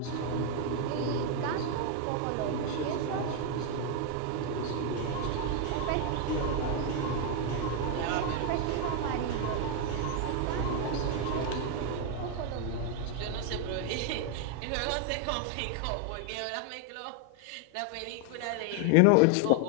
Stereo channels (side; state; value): both; different; correlation 0.00